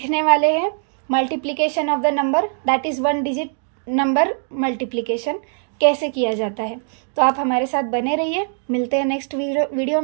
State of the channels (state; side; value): silent; left; digital silence